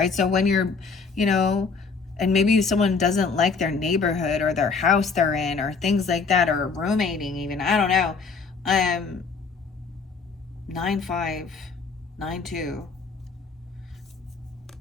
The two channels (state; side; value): quieter; right; 4.9 dB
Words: So when you're, you know, and maybe someone doesn't like their neighborhood or their house they're in or things like that, or roommating even, I don't know. 9-5, 9-2.